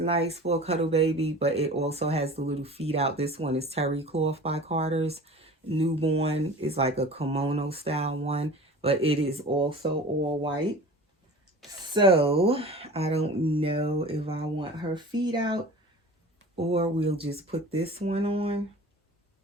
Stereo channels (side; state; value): both; normal; correlation 0.39